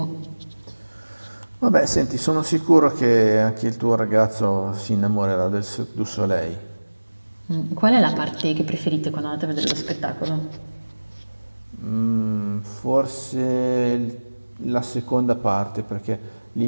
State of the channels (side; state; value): both; inverted; correlation -1.00